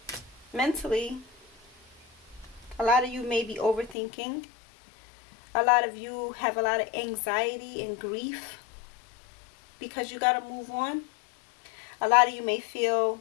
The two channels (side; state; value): right; drops out; at 4.0 s